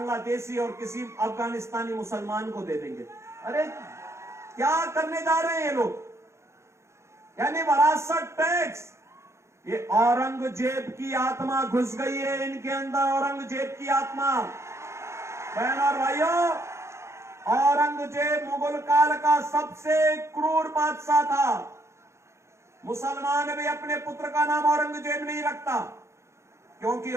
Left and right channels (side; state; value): left; late; 0.13 ms